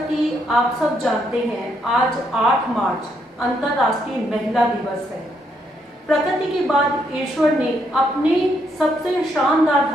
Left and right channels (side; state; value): both; normal; correlation 0.75